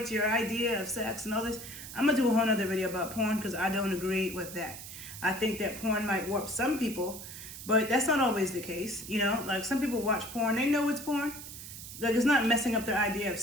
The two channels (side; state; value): right; noise; hiss, 12 dB below the sound